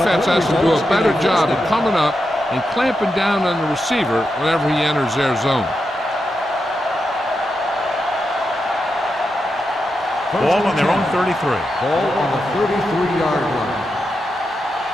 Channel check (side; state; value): both; normal; correlation 0.87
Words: has to do a better job of coming up and clamping down on the receiver whenever he enters their zone. Ball on their own 33. Ball on the 33-yard line.